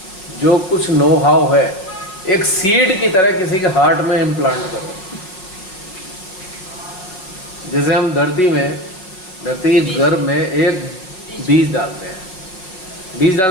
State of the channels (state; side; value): late; right; 5.4 ms